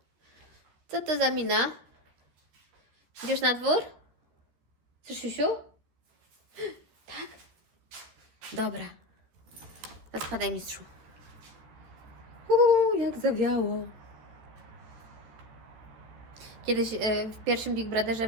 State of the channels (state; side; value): late; left; 13 ms